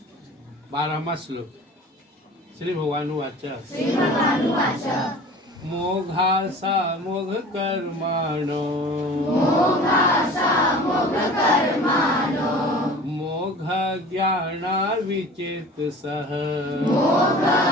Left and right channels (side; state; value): both; normal; correlation 0.42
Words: 12वां श्लोक। श्री भगवान वाच मोघासा मोघ कर्माणो मोघ ज्ञाना विचेतसः